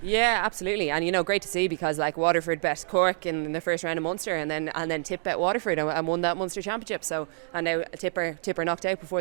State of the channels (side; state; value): left; silent; digital silence